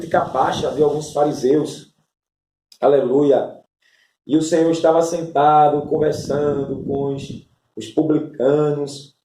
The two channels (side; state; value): both; identical; correlation 1.00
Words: baixa de alguns fariseus. Aleluia. E o Senhor estava sentado, conversando com os publicanos,